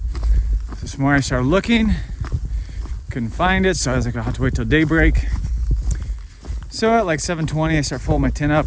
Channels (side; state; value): both; identical; correlation 1.00